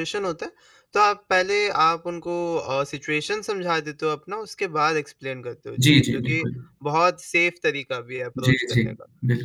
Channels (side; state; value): both; identical; correlation 1.00